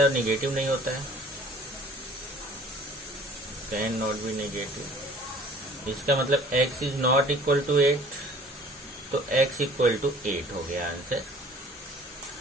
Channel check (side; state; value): both; normal; correlation 0.51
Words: है निगेटिव नहीं होता है, कैन नॉट बी निगेटिव। इसका मतलब x is not equal to 8, तो x इक्वल टू 8 हो गया आंसर।